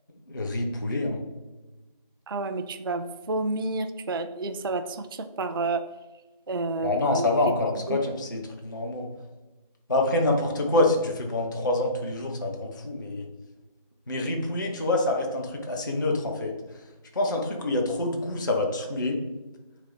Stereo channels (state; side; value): inverted; both; correlation -0.39